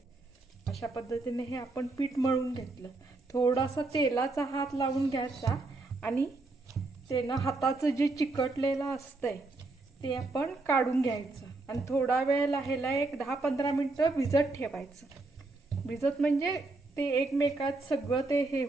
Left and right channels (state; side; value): quieter; left; 3.2 dB